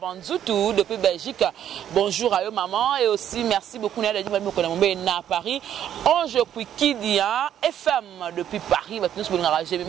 depuis Belgique. Bonjour à eux maman. Et aussi merci beaucoup à à Paris. Ange Kwikidia FM depuis Paris.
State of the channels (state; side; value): quieter; left; 10.3 dB